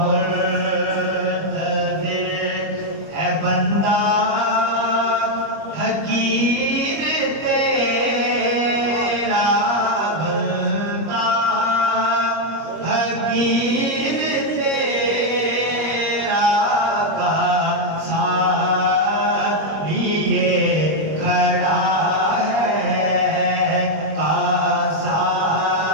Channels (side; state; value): left; late; 25 ms